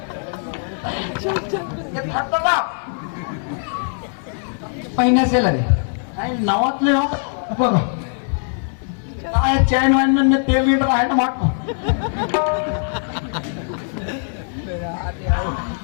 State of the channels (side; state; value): right; silent; digital silence